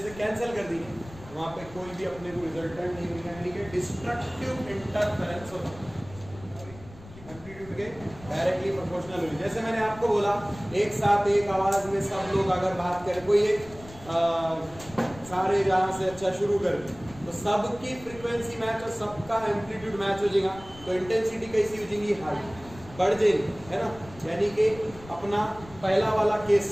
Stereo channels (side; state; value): left; noise; rumble, 18 dB below the sound